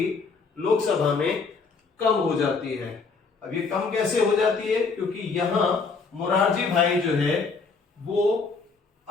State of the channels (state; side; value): quieter; right; 4.6 dB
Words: लोकसभा में कम हो जाती है। अब ये कम कैसे हो जाती है? क्योंकि यहां मोरारजी भाई जो है वो